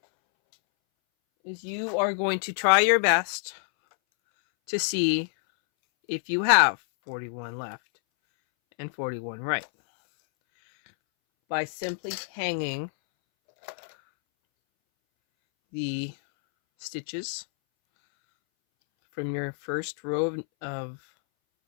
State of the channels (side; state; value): right; silent; 60 dB below the other